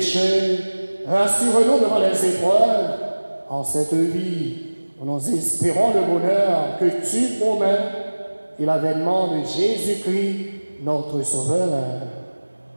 rassure-nous devant les épreuves. En cette vie, nous espérons le bonheur que tu promets et l'avènement de Jésus-Christ, notre Sauveur.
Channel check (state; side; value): inverted; both; correlation -1.00